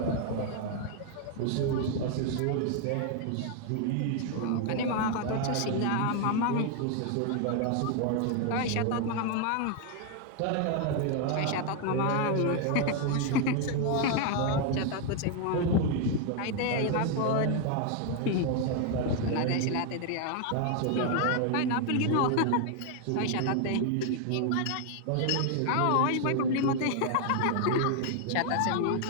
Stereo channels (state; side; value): different; both; correlation 0.00